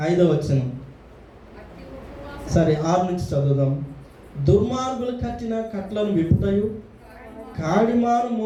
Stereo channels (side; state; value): both; identical; correlation 1.00